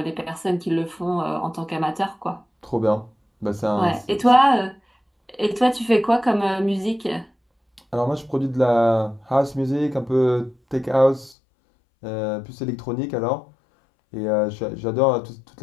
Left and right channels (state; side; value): drops out; right; at 11.4 s